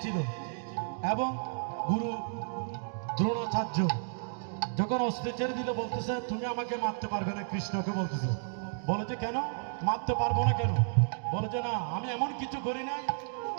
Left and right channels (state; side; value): silent; left; digital silence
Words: এবং গুরু দ্রোণাচার্য যখন অস্ত্র ছেড়ে দিল, বলতেছে তুমি আমাকে মারতে পারবে না, কৃষ্ণকে বলতেছে। বলে যে কেন মারতে পারবো না, কেন? বলে যে না, আমি এমন কিছু করি না,